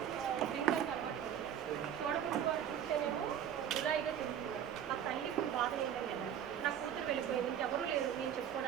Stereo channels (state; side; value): quieter; left; 9.5 dB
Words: డ్రింకర్కి అలవాటు పడుతుంది, తోడపుట్టు వారు చూస్తేనేమో జులాయిగా తింటున్నారు. ఆ తల్లికి బాధ ఏంటంటే నా కూతురు వెళ్ళిపోయింది, ఇంకెవరూ లేరు నేను